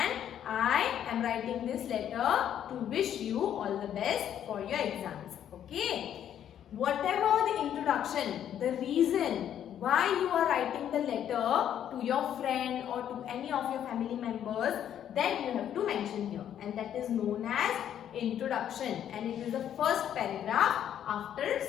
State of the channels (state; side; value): quieter; right; 10.1 dB